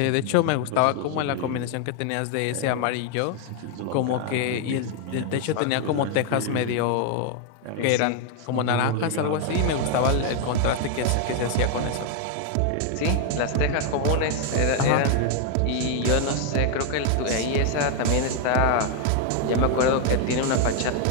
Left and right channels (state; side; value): different; both; correlation 0.00